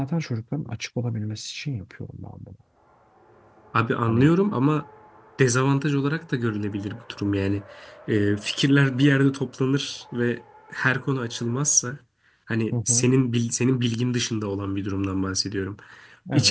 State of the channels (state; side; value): identical; both; correlation 1.00